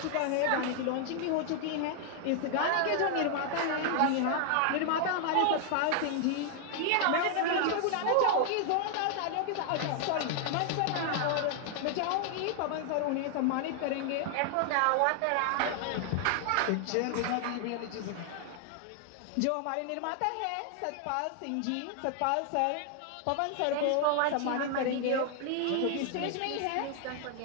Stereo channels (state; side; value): different; both; correlation 0.00